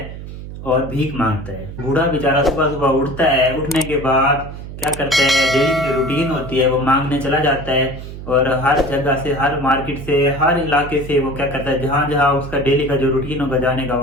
और भीख मांगता है। बूढ़ा बेचारा सुबह सुबह उठता है, उठने के बाद क्या करता है, डेली की जो रूटीन होती है वो मांगने चला जाता है और हर जगह से, हर मार्केट से, हर इलाके से वो क्या करता है, जहाँ जहाँ उसका डेली का जो रूटीन होगा जाने का,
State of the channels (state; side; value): noise; right; hum, 11 dB below the sound